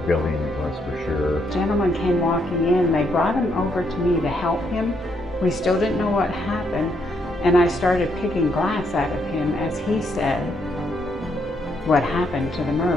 building it was for sure. A gentleman came walking in. They brought him over to me to help him. We still didn't know what happened, and I started picking glass out of him as he said what happened to the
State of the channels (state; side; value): normal; both; correlation 0.75